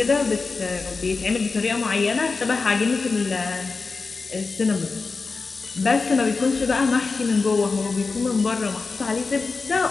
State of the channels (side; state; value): right; quieter; 4.3 dB